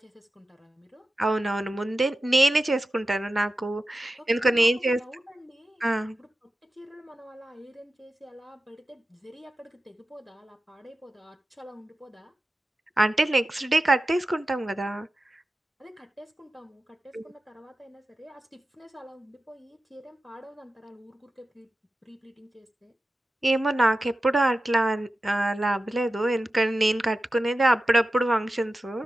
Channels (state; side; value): normal; both; correlation 0.93